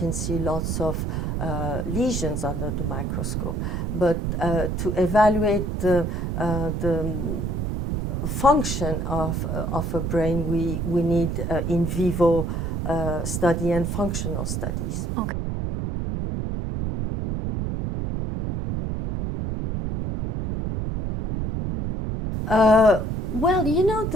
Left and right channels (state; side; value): noise; right; rumble, 2 dB below the sound